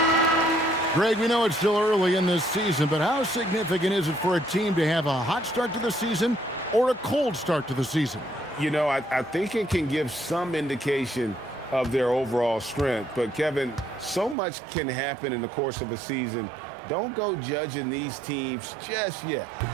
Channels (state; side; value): drops out; left; at 14.4 s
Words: Greg, we know it's still early in this season, but how significant is it for a team to have a hot start to the season or a cold start to the season? You know, I think it can give some indication of their overall strength. But, Kevin, so much can happen in the course of a season. Don't go judging these teams just yet.